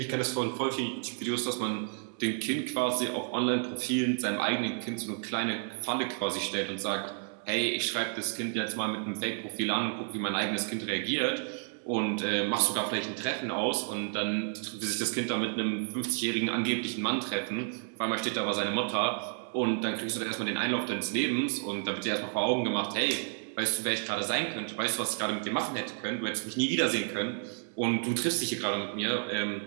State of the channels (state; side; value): silent; left; 57 dB below the other